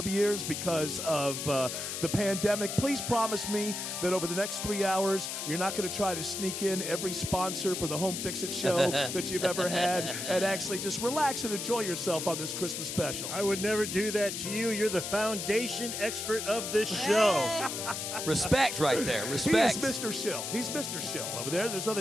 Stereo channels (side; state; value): left; noise; hiss, 5 dB below the sound